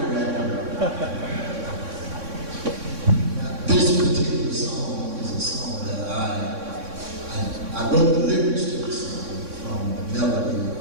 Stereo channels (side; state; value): left; late; 3.6 ms